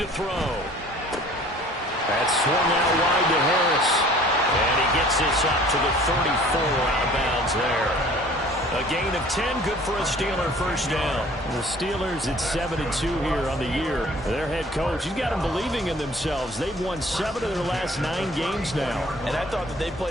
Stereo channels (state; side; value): normal; both; correlation 0.51